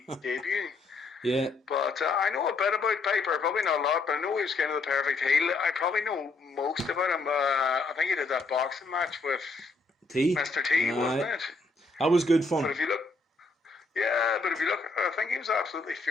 debut. Yeah. But I know a bit about Piper, probably not a lot, but I know he was kind of the perfect heel. I probably know most about him. I think he did that boxing match with T. Mr. T, wasn't Aye. it? That was good But fun. if you look, yeah, but if you look, I think he was absolutely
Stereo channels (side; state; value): right; quieter; 3.6 dB